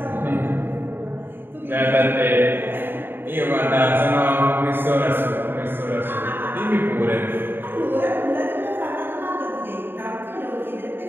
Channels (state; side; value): late; left; 0.099 ms